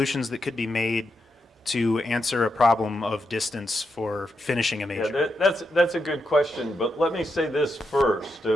that could be made to answer a problem of distance for finishing a major? Yeah, that's a good question, but let me say this first,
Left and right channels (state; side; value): normal; both; correlation 0.84